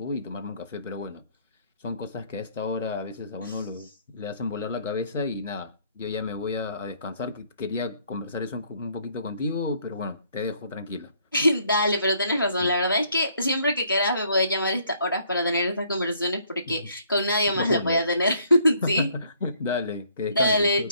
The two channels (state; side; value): inverted; both; correlation -0.64